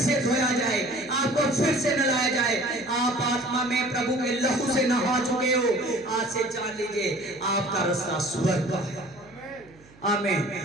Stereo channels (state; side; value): noise; right; hum, 26 dB below the sound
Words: धोया जाए, आपको फिर से नहलाया जाए। आप आत्मा में प्रभु के लहू से नहा चुके हो। आज से जान लीजिए आपका रास्ता स्वर्ग का है। आमीन।